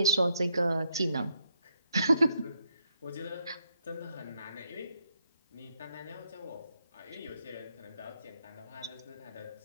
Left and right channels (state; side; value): inverted; both; correlation -0.77